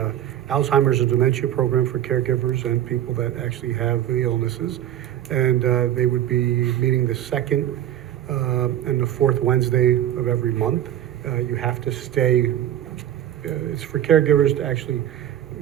Alzheimer's and dementia program for caregivers and people that actually have the illnesses. And they would be meeting the second and the fourth Wednesday of every month. You have to stay, it's for caregivers to actually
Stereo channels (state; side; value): quieter; left; 11.8 dB